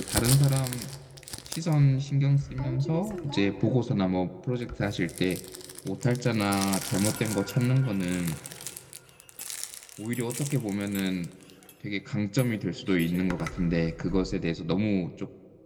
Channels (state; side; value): identical; both; correlation 1.00